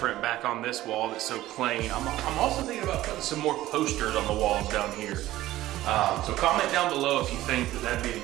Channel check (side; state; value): left; quieter; 15.4 dB